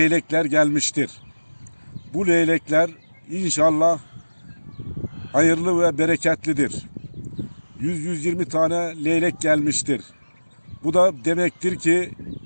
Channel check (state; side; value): inverted; both; correlation -1.00